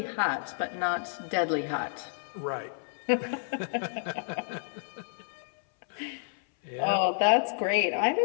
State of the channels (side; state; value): right; silent; 58 dB below the other